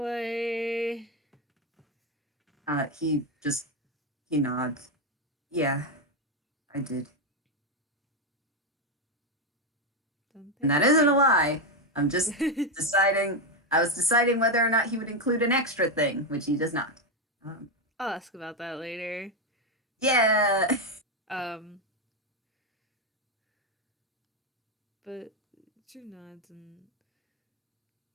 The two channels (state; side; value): normal; both; correlation 0.07